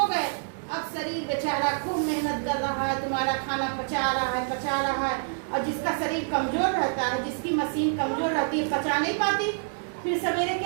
गए। अब शरीर बेचारा खूब मेहनत कर रहा है, तुम्हारा खाना पचा रहा है। और जिसका शरीर कमजोर रहता है, जिसकी मशीन कमजोर रहती है, पचा नहीं पाती, फिर सवेरे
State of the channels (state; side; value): silent; left; digital silence